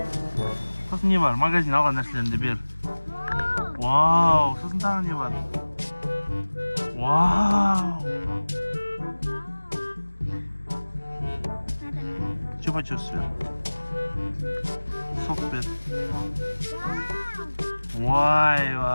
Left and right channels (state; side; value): inverted; both; correlation -1.00